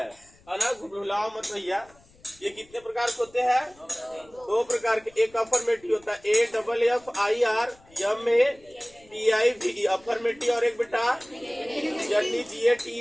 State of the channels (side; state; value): left; noise; rumble, 28 dB below the sound